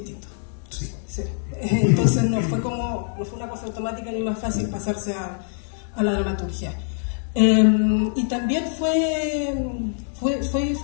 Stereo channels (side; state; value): right; silent; 63 dB below the other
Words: Sí. Entonces no fue una cosa automática ni más fácil pasarse a la dramaturgia. Y también fue